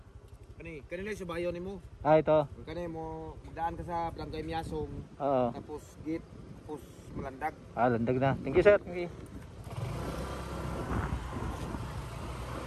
Kanina yung subayo ni mo. Ito. Kanina mo magdaan ka sa Barangay Miasong. Oo. Tapos gate, tapos malandag. Landag na. Thank you, sir. Thank you.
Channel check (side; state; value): both; identical; correlation 1.00